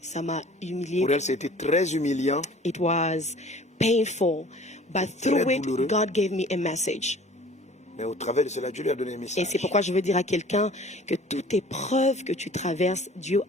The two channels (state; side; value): normal; both; correlation 0.48